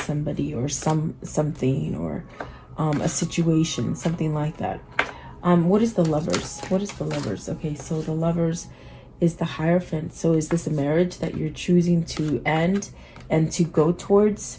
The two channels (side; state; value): both; identical; correlation 1.00